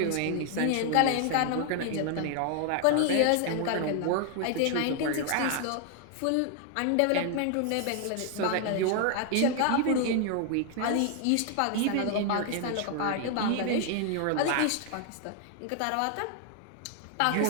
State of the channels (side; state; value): both; different; correlation 0.00